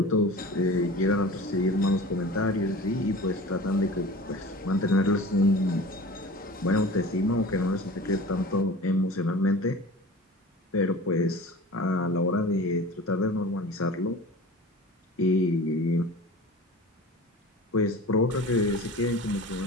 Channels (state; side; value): normal; both; correlation 0.38